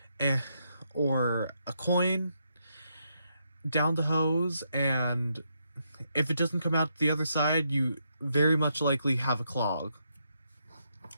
or a coin down the hose, and if it doesn't come out the other side, you very much likely have a clog.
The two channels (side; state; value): both; inverted; correlation -0.79